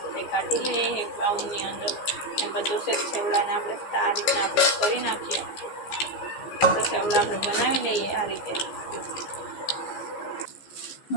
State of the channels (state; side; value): late; right; 15 ms